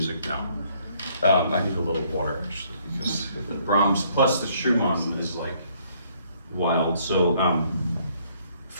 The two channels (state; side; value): inverted; both; correlation -0.66